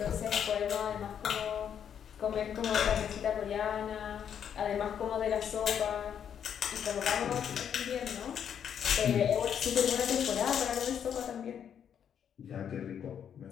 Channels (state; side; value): quieter; right; 8.5 dB